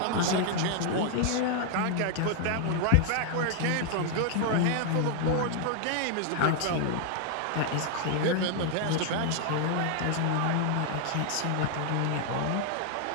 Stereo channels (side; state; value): both; different; correlation 0.00